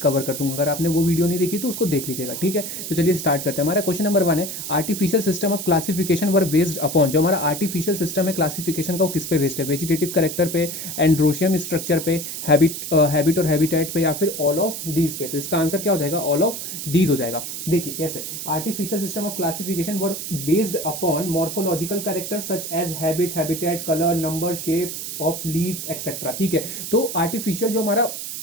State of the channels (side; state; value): right; noise; hiss, 6 dB below the sound